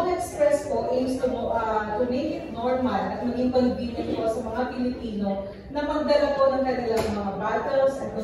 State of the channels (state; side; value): identical; both; correlation 1.00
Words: Express po aims to make it normal at maging convenient po sa mga Pilipino na magdala po ng kanilang mga bottles and